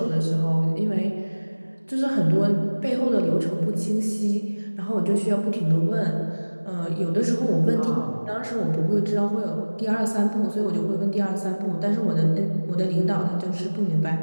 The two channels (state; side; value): inverted; both; correlation -1.00